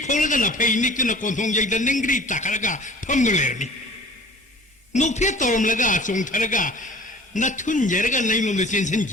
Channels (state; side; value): normal; both; correlation 0.45